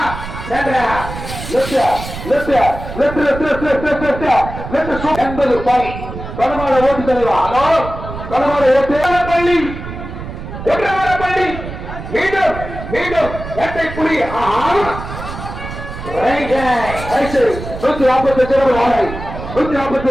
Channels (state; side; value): noise; right; rumble, 9 dB below the sound